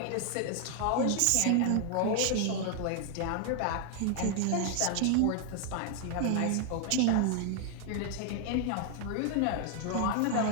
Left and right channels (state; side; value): different; both; correlation 0.00